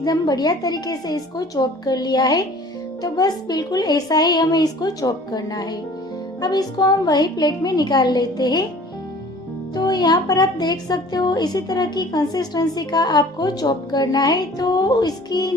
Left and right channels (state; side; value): normal; both; correlation 0.48